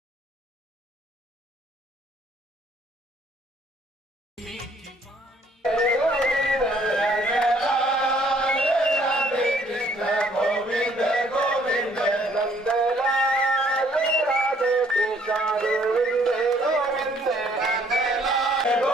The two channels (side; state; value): both; normal; correlation 0.63